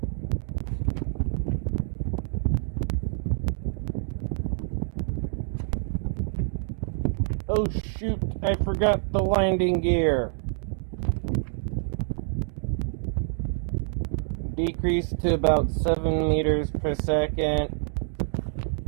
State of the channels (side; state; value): left; silent; digital silence